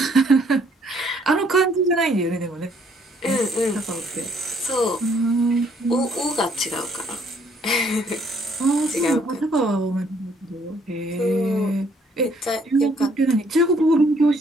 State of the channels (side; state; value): both; normal; correlation 0.65